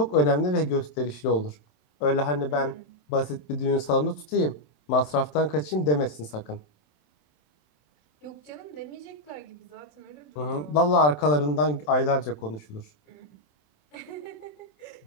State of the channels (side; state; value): right; late; 27 ms